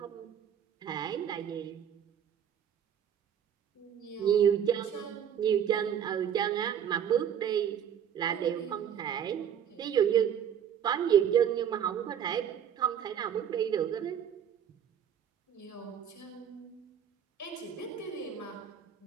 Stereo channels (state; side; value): quieter; left; 8.8 dB